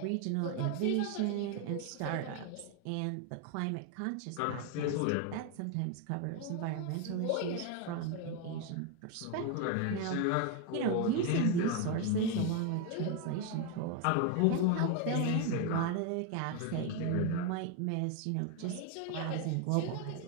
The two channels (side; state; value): both; different; correlation 0.01